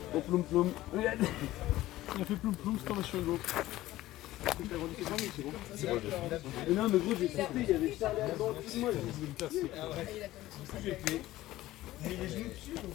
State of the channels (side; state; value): right; quieter; 16.0 dB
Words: au ploum ploum. Regarde. Il a fait ploum ploum, c'est comme sur Hugo. C'est bon. Mais non, mais gros, j'ai sauté, il y avait Charlie Alban, tout moi. J'ai fait. Mais les genoux dessus.